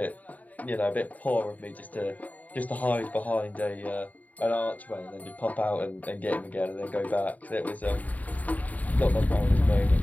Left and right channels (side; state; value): right; late; 0.074 ms